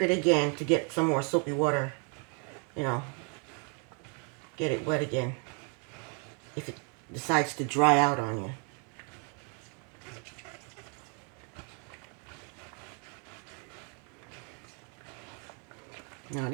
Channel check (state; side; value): quieter; left; 37.5 dB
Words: it again to get some more soapy water, you know, get it wet again if it decides to dry out on you. Now